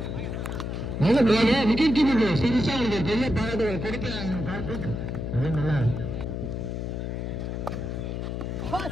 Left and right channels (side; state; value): left; noise; hum, 4 dB below the sound